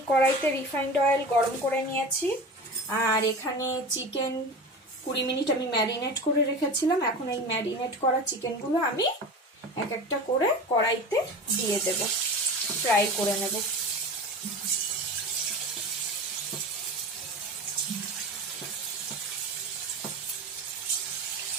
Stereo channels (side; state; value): both; normal; correlation 0.31